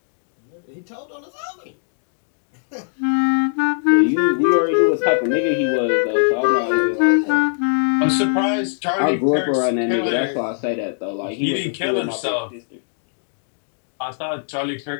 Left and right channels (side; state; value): right; silent; digital silence